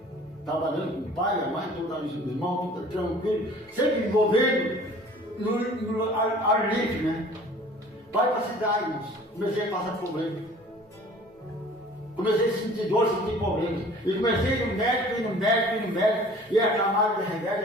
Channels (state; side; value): normal; both; correlation 0.48